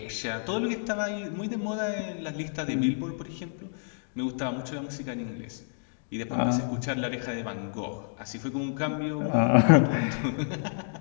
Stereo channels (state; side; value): silent; right; digital silence